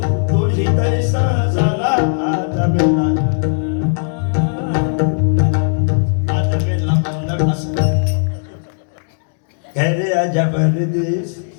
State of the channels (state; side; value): silent; right; digital silence